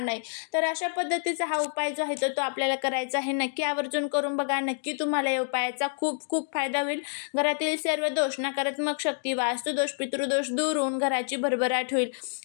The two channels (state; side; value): silent; right; digital silence